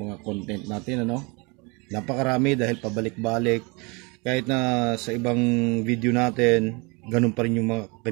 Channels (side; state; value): left; quieter; 29.1 dB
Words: content natin, Napakarami dahil pabalik-balik. Kahit na sa ibang video natin, ganun pa rin yung mga